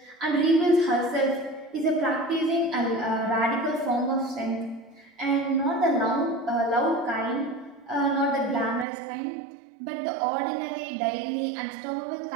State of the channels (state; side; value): drops out; left; at 8.8 s